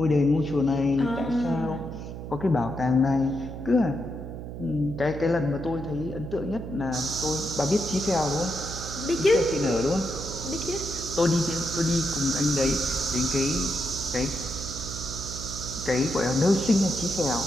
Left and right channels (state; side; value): noise; right; hum, 9 dB below the sound